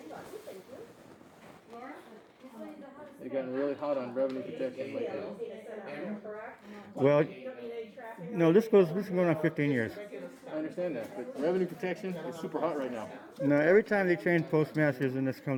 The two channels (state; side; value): identical; both; correlation 1.00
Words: button, thank you. They've gotten really hot on revenue protection lately. Need to send out there, correct? Well, You don't need any traffic. no, this is going on 15 years. I understand that, but revenue protection is super hot right now. No, every time they change postmasters and this